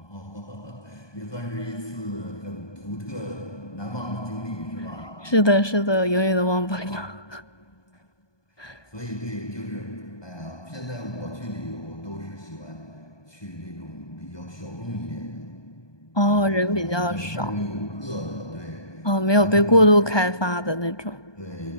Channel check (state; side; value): late; right; 1.2 ms